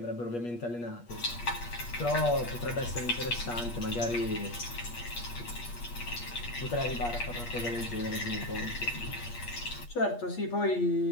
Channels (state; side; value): late; right; 8.4 ms